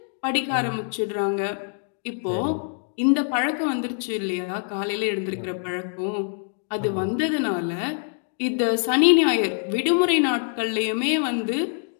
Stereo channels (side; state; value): right; silent; 56 dB below the other